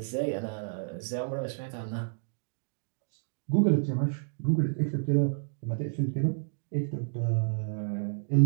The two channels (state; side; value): silent; left; digital silence